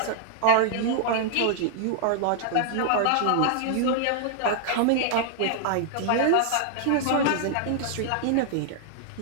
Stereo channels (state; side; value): different; both; correlation -0.01